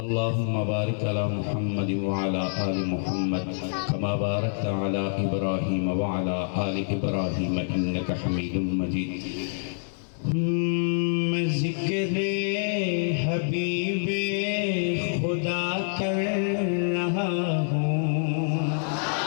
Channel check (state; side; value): silent; right; 61 dB below the other